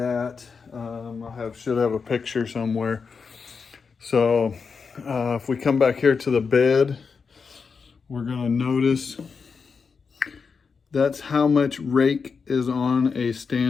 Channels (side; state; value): right; quieter; 5.4 dB